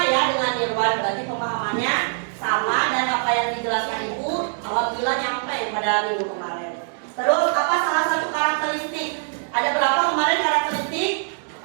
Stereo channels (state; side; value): silent; left; digital silence